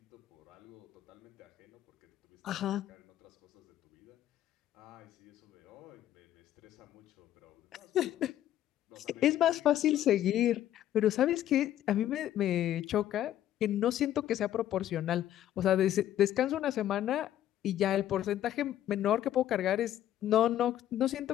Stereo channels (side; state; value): right; quieter; 12.1 dB